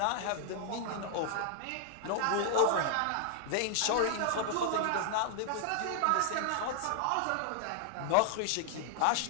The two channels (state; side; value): different; both; correlation 0.00